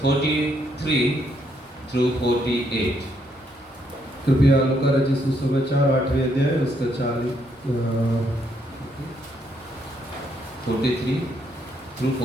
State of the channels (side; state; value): both; normal; correlation 0.74